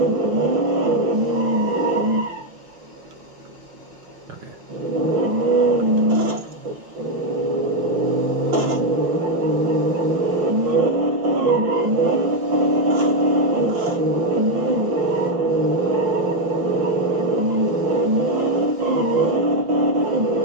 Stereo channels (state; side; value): late; left; 5.8 ms